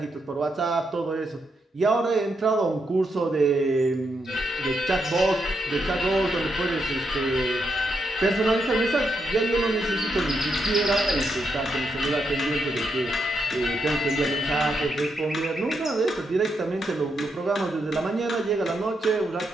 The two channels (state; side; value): normal; both; correlation 0.81